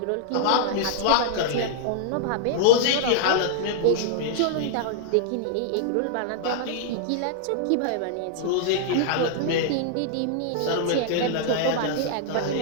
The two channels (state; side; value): different; both; correlation -0.01